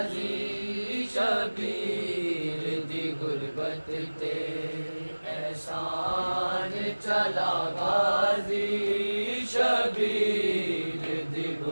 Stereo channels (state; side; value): inverted; both; correlation -1.00